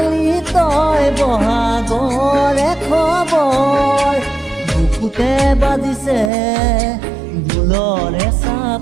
তই বহাগৰে খবৰ বুকুতে বাজিছে ঢোলৰে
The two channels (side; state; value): left; drops out; at 6.3 s